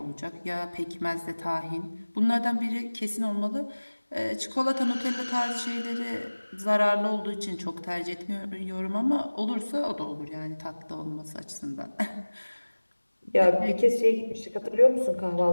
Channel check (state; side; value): inverted; both; correlation -1.00